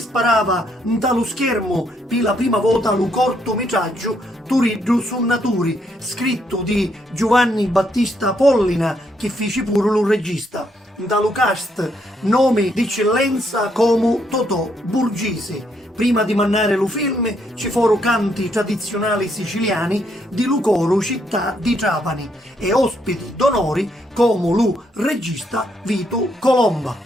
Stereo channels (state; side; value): normal; both; correlation 0.74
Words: sparava dallo schermo per la prima volta lo cortometraggio Turiddu su Naturi, scritto di Giovanni Battista Pollina, che fece pure lo regista. Dallo cast nome d'eccellenza come Totò Burgese. Prima di mandare lo film ci furono canti tradizionali siciliani di Lucoro, città di Trapani, e ospiti d'onori come lo regista Vito Colomba.